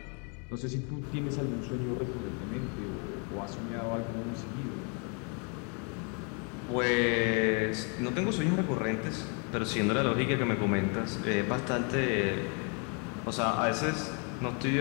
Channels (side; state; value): right; quieter; 36.4 dB